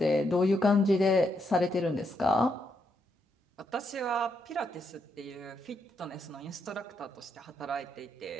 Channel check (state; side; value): normal; both; correlation 0.79